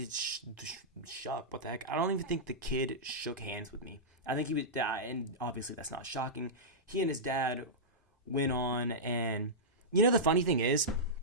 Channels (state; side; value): normal; both; correlation -0.12